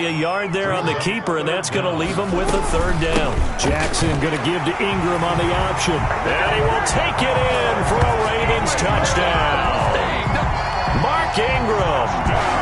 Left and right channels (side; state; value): both; identical; correlation 1.00